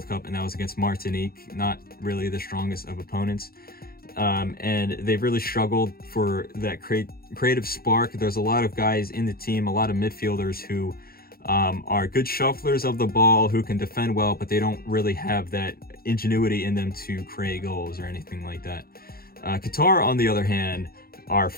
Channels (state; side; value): late; right; 0.44 ms